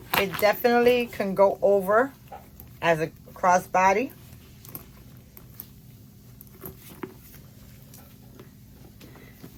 It definitely can go over as a crossbody.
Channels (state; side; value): identical; both; correlation 1.00